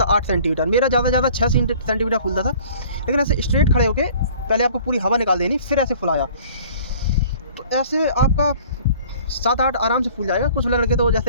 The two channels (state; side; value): inverted; both; correlation -0.50